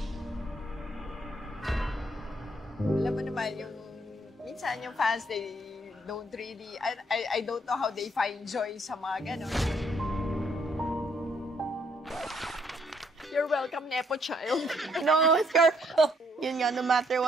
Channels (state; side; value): normal; both; correlation 0.69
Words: Alam mo naman, minsan yung fans, they don't really, I don't know how they find joy sa mga ganon. You're welcome, Nepo child. No, it's your fault. Yun nga, no matter